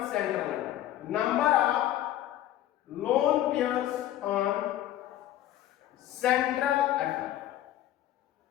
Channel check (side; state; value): right; quieter; 13.1 dB